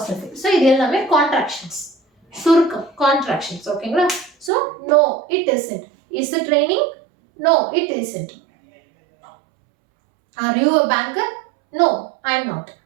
of it. so இது எல்லாமே contractions, சுருக்கம், contractions. ஓகேங்களா? so no it isn't. is it raining? no it isn't. are you a banker? no I am not.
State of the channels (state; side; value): drops out; left; at 4.5 s